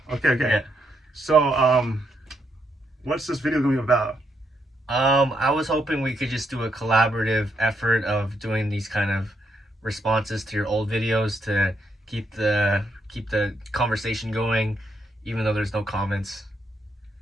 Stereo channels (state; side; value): normal; both; correlation 0.78